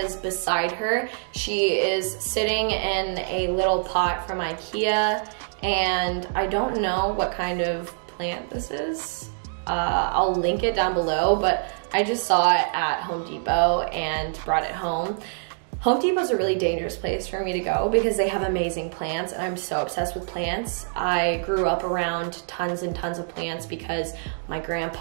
is beside her. She is sitting in a little pot from IKEA, and I don't know what kind of plant this is. I'll link it down below, but I just saw it at Home Depot and brought it home. Home Depot is a really dangerous place for me to go because they have amazing plants and I'm so obsessed with plants. I grew up around tons and tons of plants because my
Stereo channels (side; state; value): left; silent; digital silence